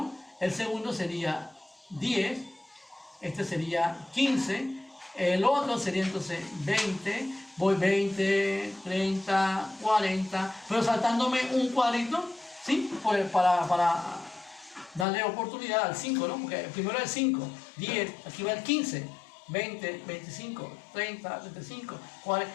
El segundo sería 10, este sería 15, el otro sería entonces 20, voy 20, 30, 40, pero saltándome un cuadrito, ¿sí? Pues para darle oportunidad al 5, ¿no? Porque el primero es 5, 10, aquí va el 15, 20, 25, 30, 35,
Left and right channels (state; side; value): drops out; right; at 15.1 s